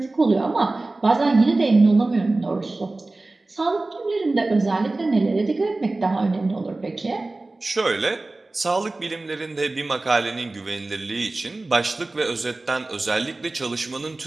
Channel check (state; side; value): quieter; left; 3.1 dB